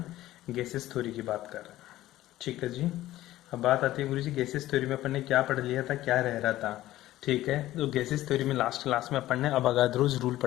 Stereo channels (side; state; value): right; quieter; 15.2 dB